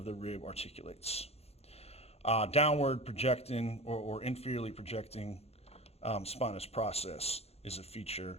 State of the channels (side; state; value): right; late; 0.30 ms